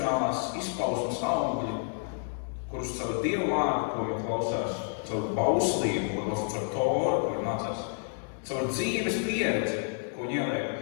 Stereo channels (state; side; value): silent; right; digital silence